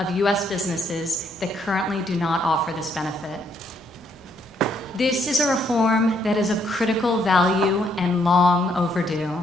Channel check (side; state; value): both; normal; correlation 0.71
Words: U.S. businesses that currently do not offer this benefit. This is a reform that is of critical value and long overdue.